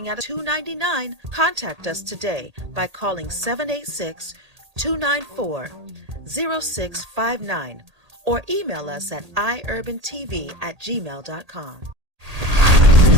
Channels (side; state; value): left; late; 1.8 ms